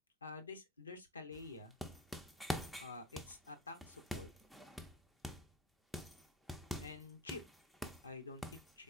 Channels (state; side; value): normal; both; correlation 0.34